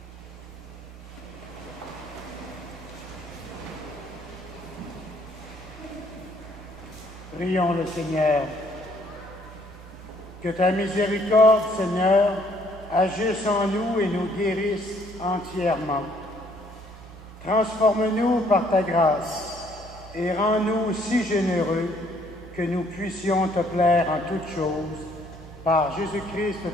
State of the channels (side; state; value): both; normal; correlation 0.64